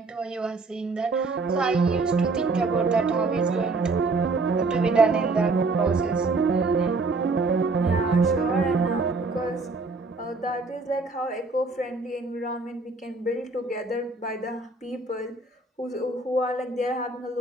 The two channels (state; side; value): quieter; left; 3.6 dB